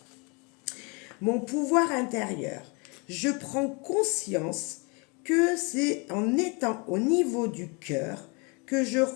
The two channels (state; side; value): quieter; right; 31.6 dB